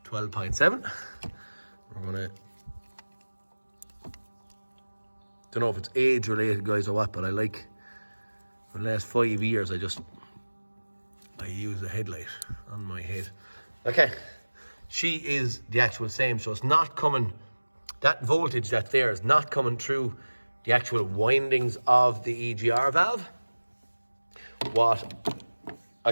12.7. We're gonna, don't know if it's age related guys or what, but I like, for the last 5 years I use the headlight on my head. Okay, she is the actual same, so it's not coming, that voltage that's there is not coming through the actual windings of the EGR valve. What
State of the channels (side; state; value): both; inverted; correlation -1.00